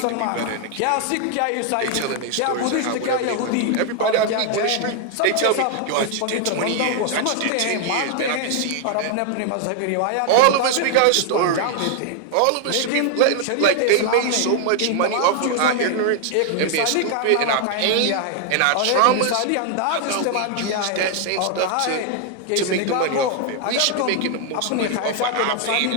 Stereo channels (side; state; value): both; different; correlation 0.00